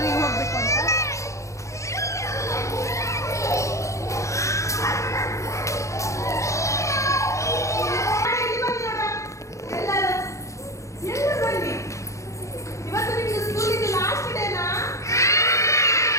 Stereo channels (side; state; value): right; late; 0.15 ms